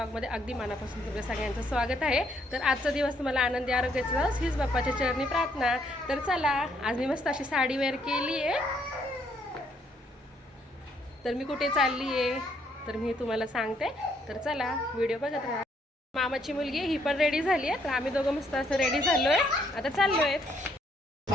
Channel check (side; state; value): both; normal; correlation 0.70